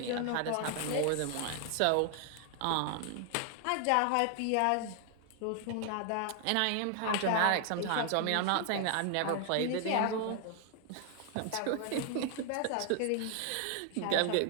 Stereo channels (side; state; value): both; different; correlation 0.00